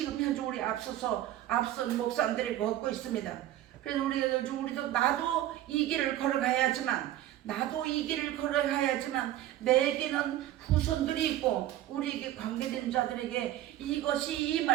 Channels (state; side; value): quieter; left; 13.4 dB